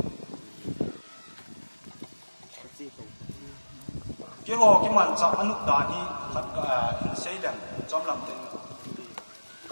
cái hồ cái màn chạm anh nút đá đi khát xây lem chom làm thế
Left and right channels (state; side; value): inverted; both; correlation -1.00